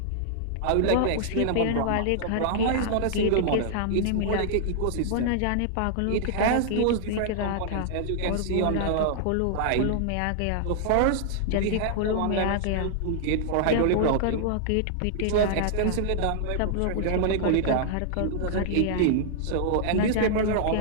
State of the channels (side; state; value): both; different; correlation -0.01